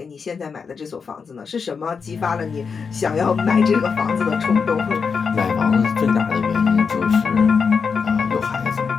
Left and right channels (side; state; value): right; quieter; 5.6 dB